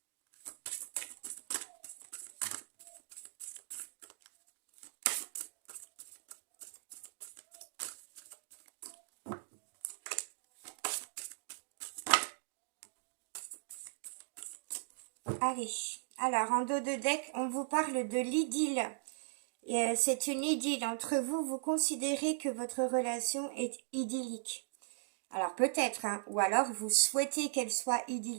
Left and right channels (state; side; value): silent; left; digital silence